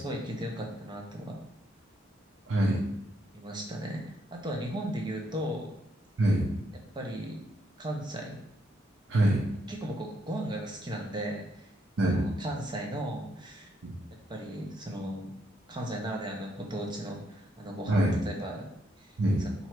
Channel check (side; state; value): both; normal; correlation 0.76